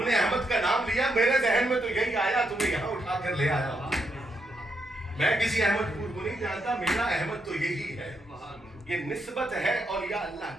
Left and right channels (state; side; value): normal; both; correlation 0.80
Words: نے احمد کا نام لیا، میرے ذہن میں تو یہی آیا، تمہیں یہاں اٹھا کر لے آیا۔ میں کسی احمد پور کو نہیں جانتا، میرا احمد تو یہی ہے۔ یہ نسبت ہے اولیاء اللہ